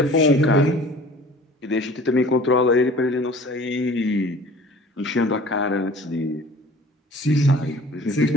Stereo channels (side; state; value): both; normal; correlation 0.47